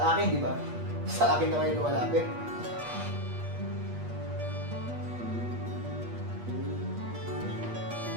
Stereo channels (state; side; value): late; left; 8.4 ms